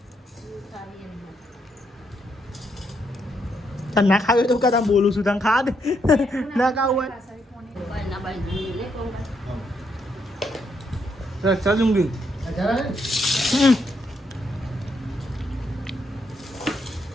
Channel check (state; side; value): normal; both; correlation 0.76